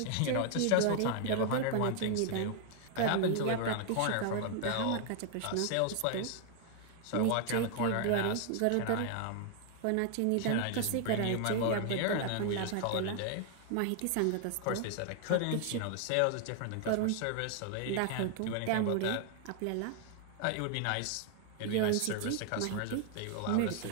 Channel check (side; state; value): both; different; correlation 0.00